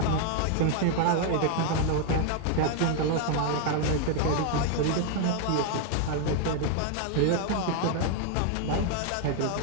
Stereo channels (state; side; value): different; both; correlation 0.00